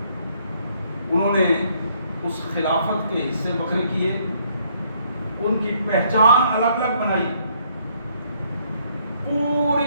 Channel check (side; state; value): both; inverted; correlation -0.68